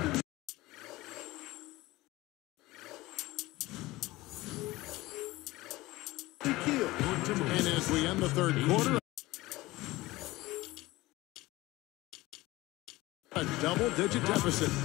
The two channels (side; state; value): right; quieter; 19.1 dB